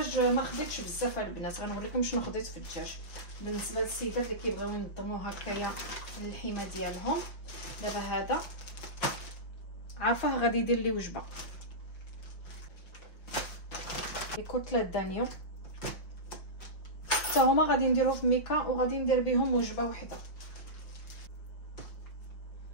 ما خديتش بزاف البنات، غنوريكم شنو خديت في الدجاج بالنسبه للسيدات اللي كيبغيو ينظموا هكايا اللحيمه ديالهم. دابا هذا عارفه غادي يدير لي وجبه كتله دانيو، حتى هما غادي نديرو في ميكا وغادي ندير بهم وجبه وحده.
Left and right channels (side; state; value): right; late; 5.3 ms